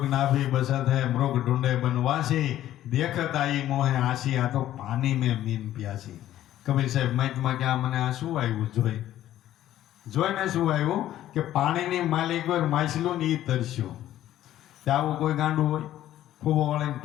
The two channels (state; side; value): quieter; right; 12.9 dB